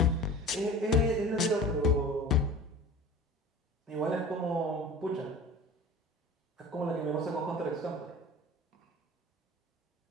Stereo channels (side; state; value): both; normal; correlation 0.39